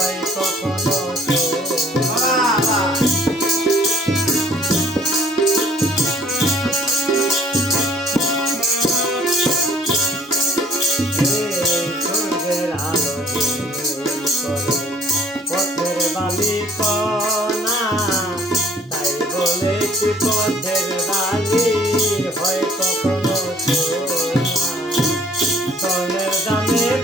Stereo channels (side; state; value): both; normal; correlation 0.56